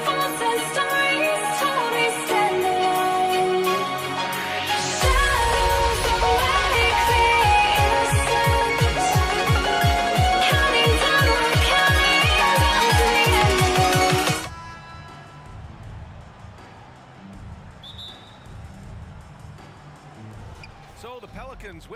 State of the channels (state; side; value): identical; both; correlation 1.00